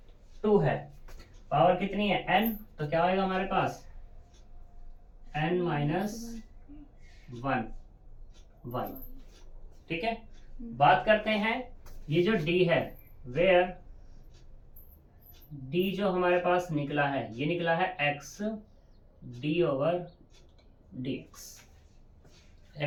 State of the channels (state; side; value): identical; both; correlation 1.00